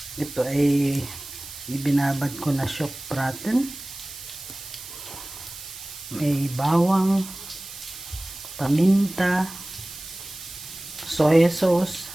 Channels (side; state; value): right; noise; hiss, 13 dB below the sound